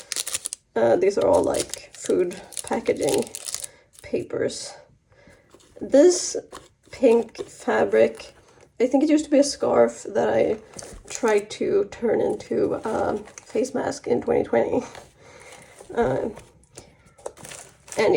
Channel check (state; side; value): identical; both; correlation 1.00